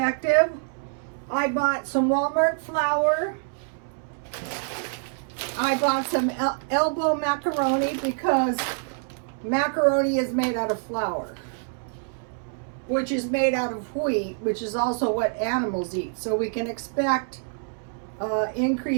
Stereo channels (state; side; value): silent; left; 61 dB below the other